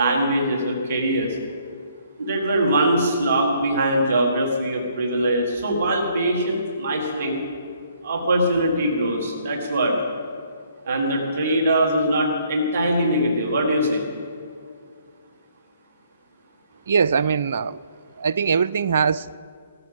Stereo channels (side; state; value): both; inverted; correlation -0.66